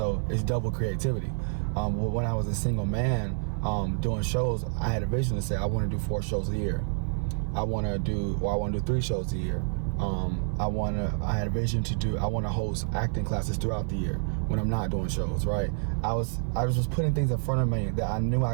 it's double creativity. When I was a single man doing shows, I had a vision to say I want to do 4 shows a year. I want to do 3 shows a year. I had a vision I want to host acting classes throughout the year when I'm not doing shows, right? I was just putting things in front of me that I knew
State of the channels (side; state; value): left; silent; 59 dB below the other